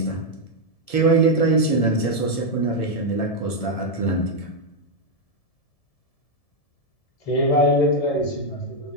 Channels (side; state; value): right; late; 1.7 ms